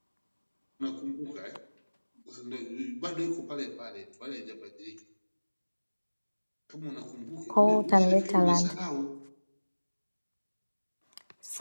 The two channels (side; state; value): both; inverted; correlation -1.00